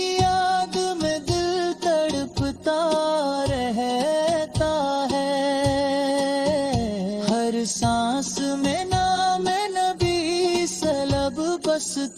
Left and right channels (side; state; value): both; identical; correlation 1.00